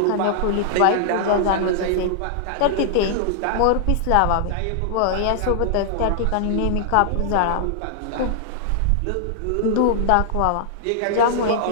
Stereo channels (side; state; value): both; different; correlation -0.01